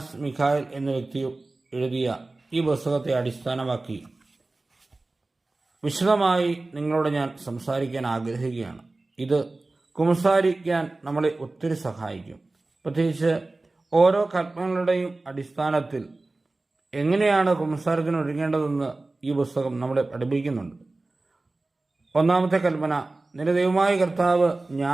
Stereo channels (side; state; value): left; quieter; 3.2 dB